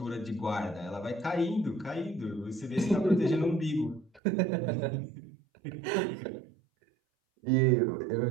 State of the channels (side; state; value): left; drops out; at 4.2 s